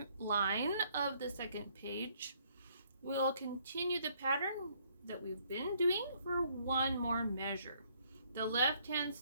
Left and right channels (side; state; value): both; inverted; correlation -0.66